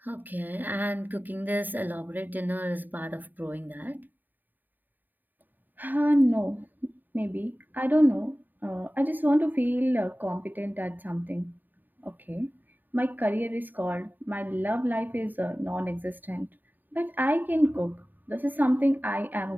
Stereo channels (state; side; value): late; left; 0.089 ms